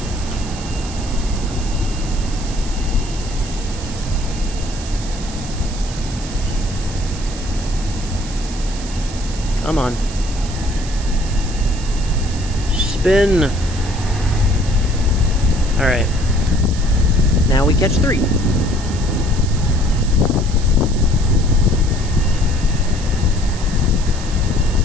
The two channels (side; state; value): right; noise; hiss, 13 dB below the sound